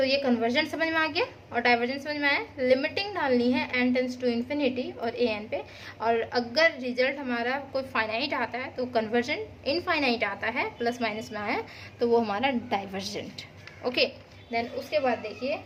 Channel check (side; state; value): both; identical; correlation 1.00